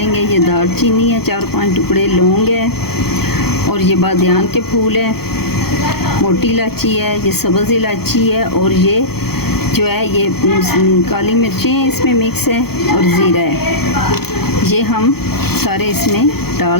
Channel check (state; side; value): late; right; 0.96 ms